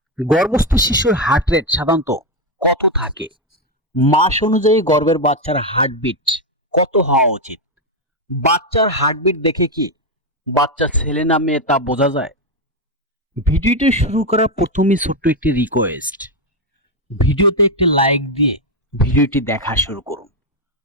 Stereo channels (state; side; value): normal; both; correlation 0.06